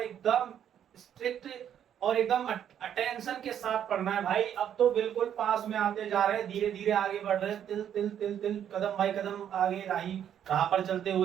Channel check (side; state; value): left; quieter; 9.6 dB